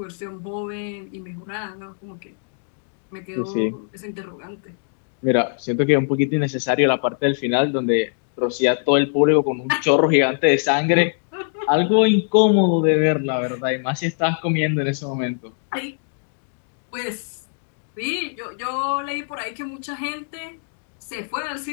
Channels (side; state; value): right; silent; digital silence